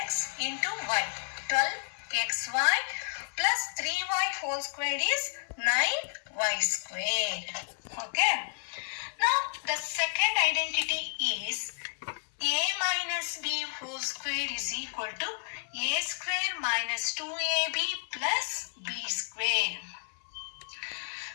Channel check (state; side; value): silent; right; 57 dB below the other